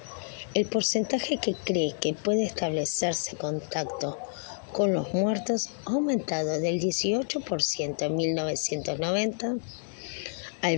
El porcentaje que cree que puede establecerse contacto con los muertos ha aumentado del 18% en 1990 al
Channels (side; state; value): right; silent; digital silence